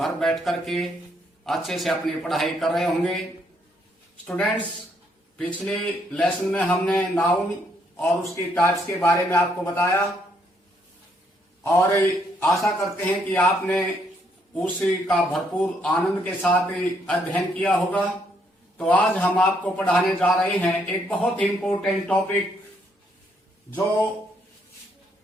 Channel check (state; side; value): normal; both; correlation 0.72